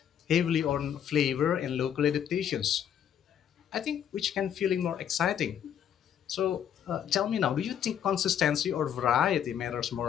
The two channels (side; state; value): right; quieter; 9.3 dB